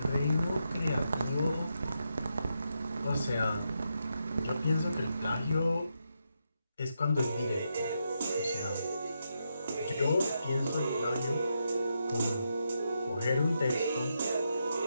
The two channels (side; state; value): both; inverted; correlation -0.83